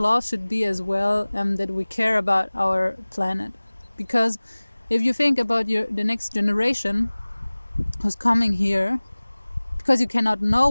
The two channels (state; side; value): inverted; both; correlation -1.00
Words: should be as well, that we care about our planet. Because if you think about the next generation who's coming here, because you cannot know